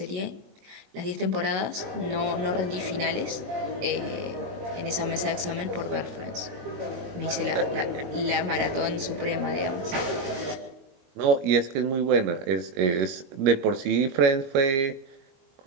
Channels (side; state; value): left; late; 21 ms